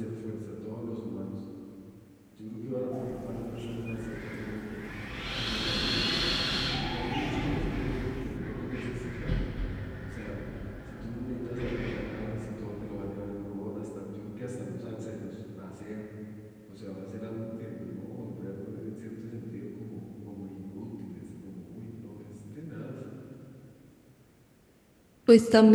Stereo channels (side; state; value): both; identical; correlation 1.00